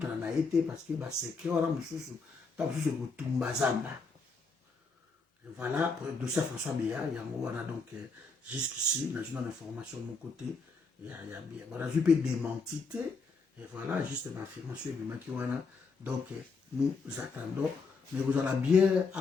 Naye, parce qu'il va secret, on va monsieur, tant que vous Tumbazamba. Voilà, pour le dossier François Béa, il y a donc jusqu'ici, on a une information de mon côté, il y a bien. On a vu peu démentité, et voilà, juste une affirmation de Makiwana. Donc, nous attendons, mais vous en avez bien à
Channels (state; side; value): quieter; right; 4.3 dB